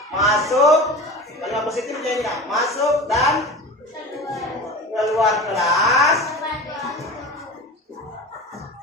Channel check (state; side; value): normal; both; correlation 0.33